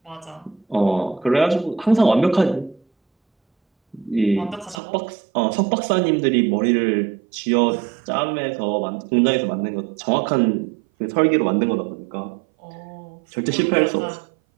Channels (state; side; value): drops out; left; at 4.8 s